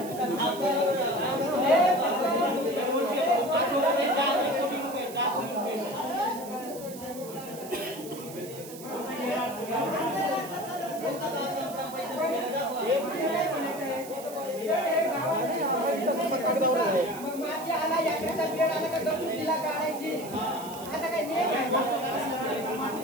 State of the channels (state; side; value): noise; right; hiss, 15 dB below the sound